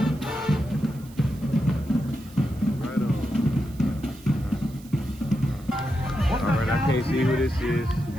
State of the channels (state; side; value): noise; right; hiss, 24 dB below the sound